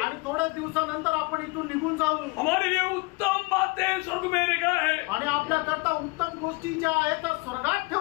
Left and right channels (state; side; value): quieter; right; 26.6 dB